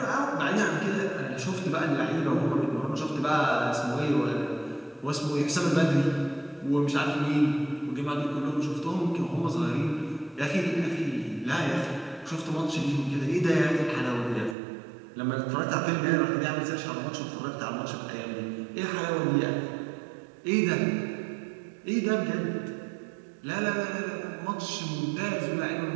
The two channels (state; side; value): drops out; left; at 14.6 s